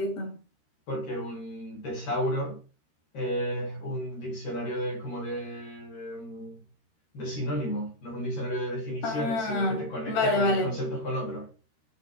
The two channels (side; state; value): right; late; 13 ms